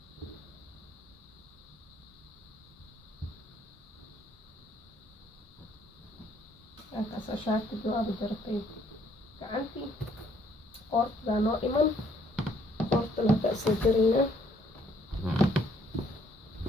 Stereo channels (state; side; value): normal; both; correlation 0.65